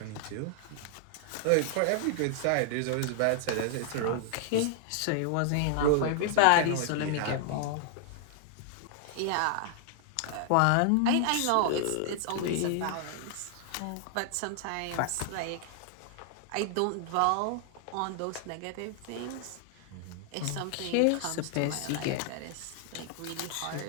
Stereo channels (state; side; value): different; both; correlation 0.00